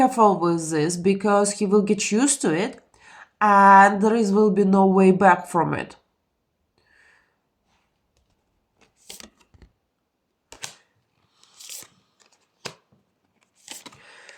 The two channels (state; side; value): identical; both; correlation 1.00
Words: with this because he will get used to it and there will be no way back from it.